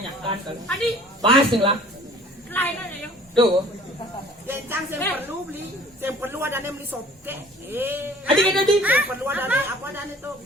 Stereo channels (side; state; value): both; normal; correlation 0.50